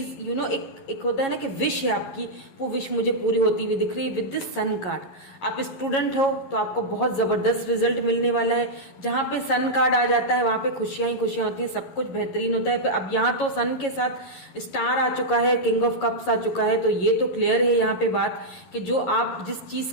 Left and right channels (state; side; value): late; right; 11 ms